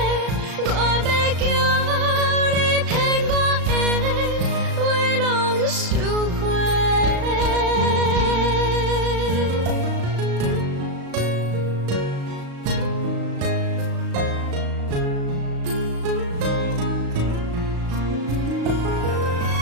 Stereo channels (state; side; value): late; left; 36 ms